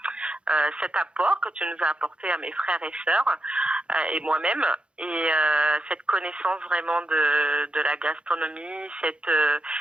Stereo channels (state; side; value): late; left; 0.057 ms